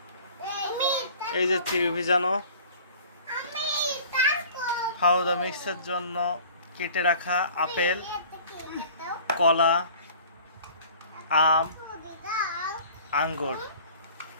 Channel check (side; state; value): both; inverted; correlation -0.47